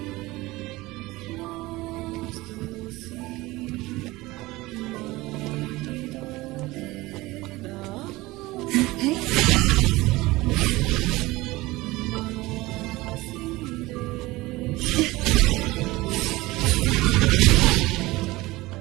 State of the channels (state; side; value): quieter; left; 20.1 dB